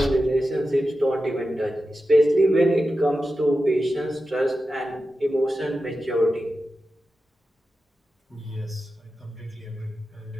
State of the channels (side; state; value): both; normal; correlation 0.92